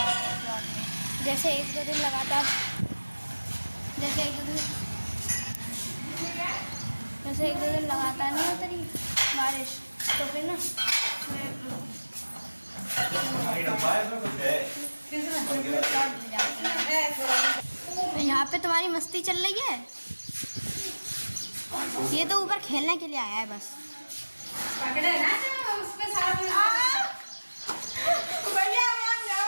जैसे एक दो दिन लगातार नहीं होती रही बारिश, तो फिर ना यहाँ पे तुम्हारी मस्ती चल रही है। ये तो ऊपर खेलने के लिए आया है बस। पकड़े ना जो उसमें सारा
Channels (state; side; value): inverted; both; correlation -1.00